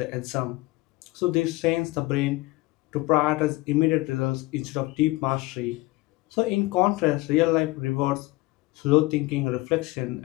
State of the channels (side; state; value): right; quieter; 20.6 dB